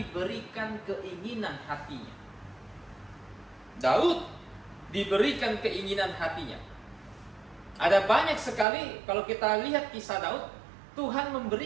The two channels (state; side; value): drops out; left; at 8.7 s